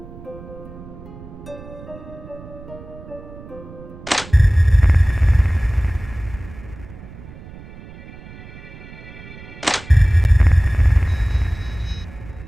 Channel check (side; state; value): right; noise; rumble, 17 dB below the sound